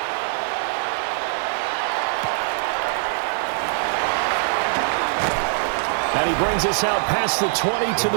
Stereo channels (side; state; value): left; silent; digital silence